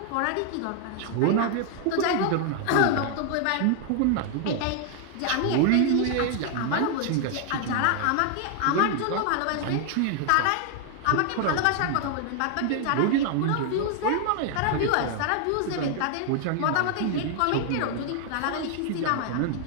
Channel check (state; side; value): different; both; correlation 0.00